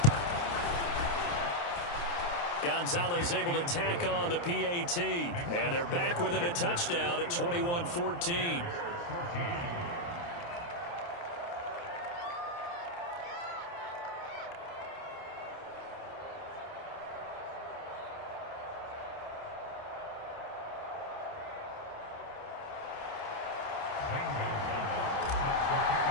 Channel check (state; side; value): late; right; 29 ms